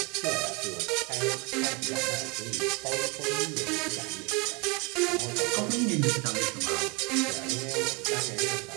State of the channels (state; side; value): quieter; left; 28.9 dB